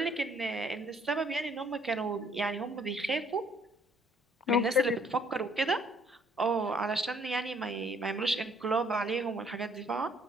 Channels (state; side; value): normal; both; correlation 0.63